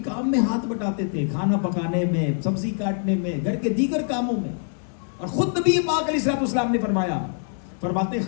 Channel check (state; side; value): silent; right; 62 dB below the other